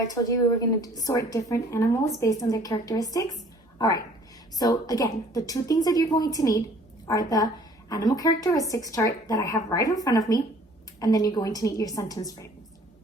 told you we were going to sort different animals based on their characteristics? All right, so again, the 2 things that you're going to need are the animal characteristics chart that I have right in front of me, and then you're going to need your sentence frames.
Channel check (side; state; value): both; normal; correlation 0.54